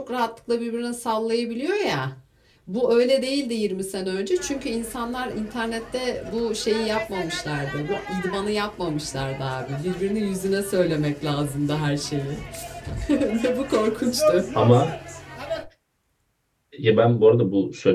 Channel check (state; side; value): identical; both; correlation 1.00